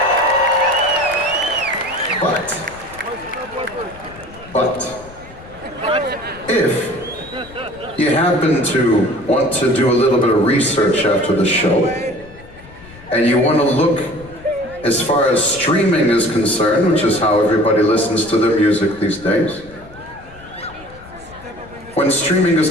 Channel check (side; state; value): left; noise; rumble, 21 dB below the sound